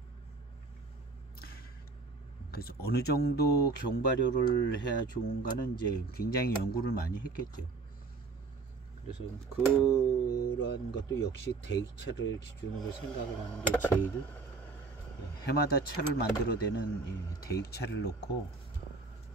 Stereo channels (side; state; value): left; quieter; 4.1 dB